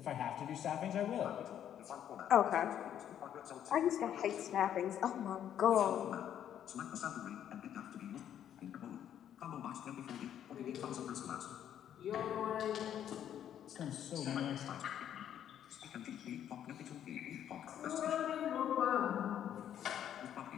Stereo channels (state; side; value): quieter; right; 10.1 dB